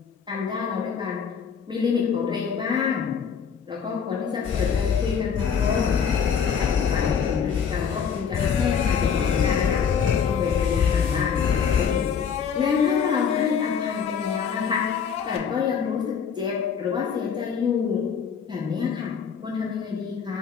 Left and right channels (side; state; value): right; quieter; 6.9 dB